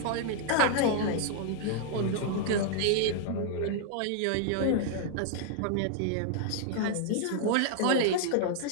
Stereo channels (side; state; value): both; different; correlation -0.01